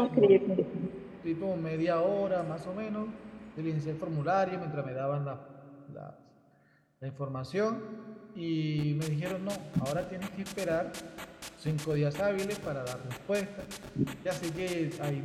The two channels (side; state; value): both; identical; correlation 1.00